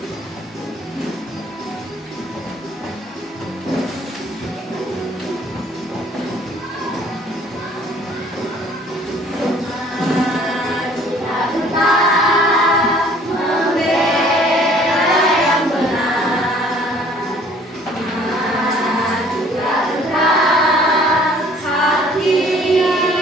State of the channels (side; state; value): both; normal; correlation 0.55